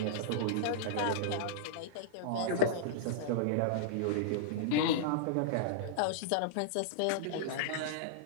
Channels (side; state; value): both; different; correlation -0.02